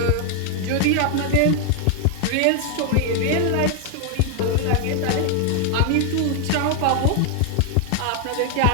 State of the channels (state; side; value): different; both; correlation 0.00